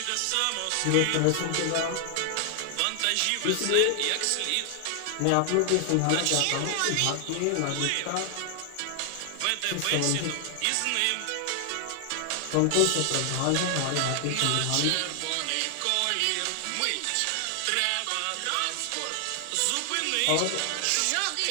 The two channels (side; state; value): both; different; correlation 0.00